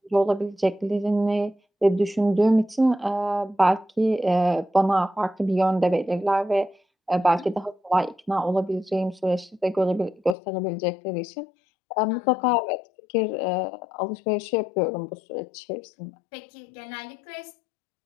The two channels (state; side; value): drops out; right; at 10.4 s